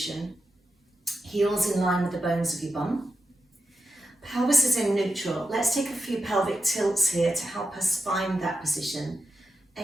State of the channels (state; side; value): normal; both; correlation 0.91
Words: Heels in line with the bones of your bum. Pelvis is in neutral. Let's take a few pelvic tilts here to help us find that position.